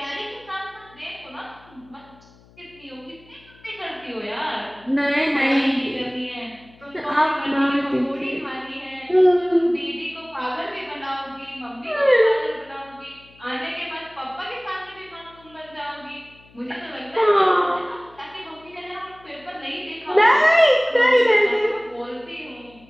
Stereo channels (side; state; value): left; noise; hum, 27 dB below the sound